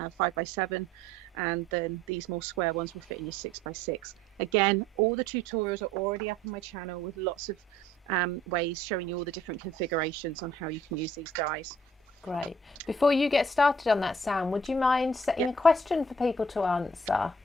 and then these more square ones will fit in your 6x6. Again, all the tutorials are already up on my channel with lots of ways showing you all the different configurations on how you can use these dies. Great. Before you get started on that, Sam, would you mind setting a question for people to answer?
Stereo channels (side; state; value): both; normal; correlation 0.57